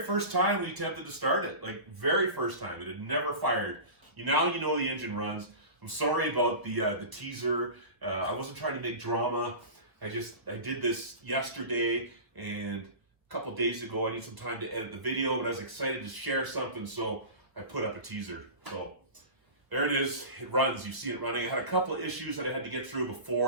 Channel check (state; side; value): late; left; 1.3 ms